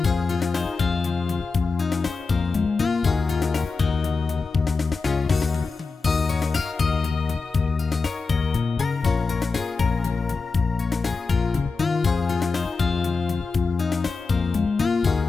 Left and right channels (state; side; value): quieter; right; 4.3 dB